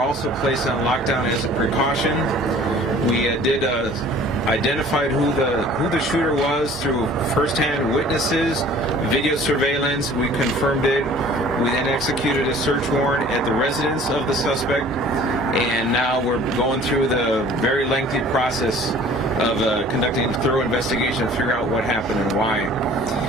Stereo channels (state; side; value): normal; both; correlation 0.49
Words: also placed on lockdown as a precaution. We identified who the shooter was through first-hand witnesses, video surveillance. We confirmed it. We then executed a search warrant at the residence of the suspect, and now we're going through the very lengthy process of conducting a thorough investigation to figure out what happened and why.